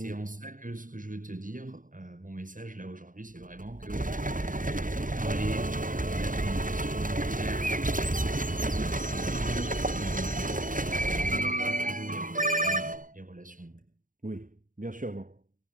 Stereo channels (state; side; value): late; left; 0.39 ms